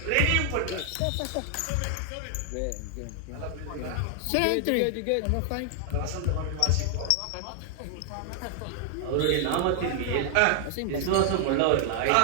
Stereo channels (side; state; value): both; different; correlation 0.00